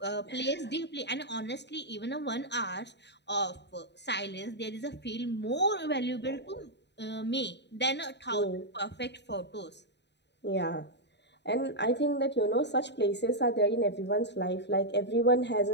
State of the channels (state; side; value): late; right; 0.50 ms